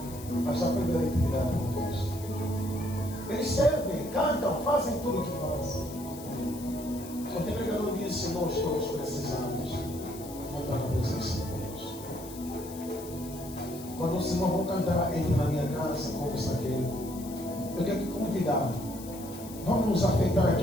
mas está perdendo a intimidade com Cristo. Eles servem, cantam, fazem tudo o que fazem. Quando o pregador disse, nós todos precisamos voltar na presença de Deus. Quando o Senhor vão cantar, entre na minha casa, como Zaqueu, eu quero te convidar. Vamos nos afetar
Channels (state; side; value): noise; left; hiss, 16 dB below the sound